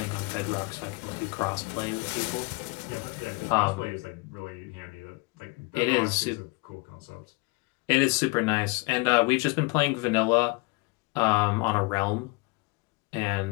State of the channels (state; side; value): quieter; right; 26.5 dB